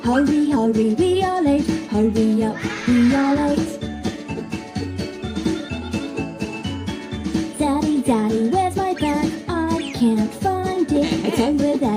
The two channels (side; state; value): both; identical; correlation 1.00